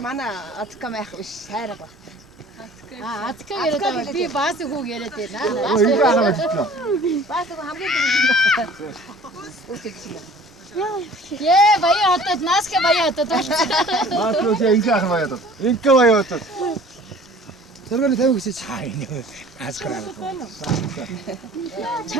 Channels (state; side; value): normal; both; correlation 0.48